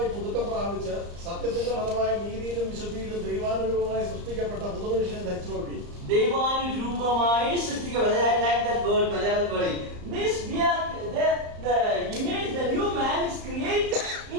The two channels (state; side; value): late; left; 34 ms